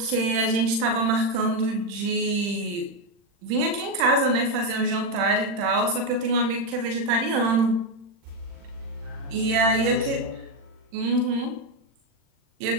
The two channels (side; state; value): left; late; 40 ms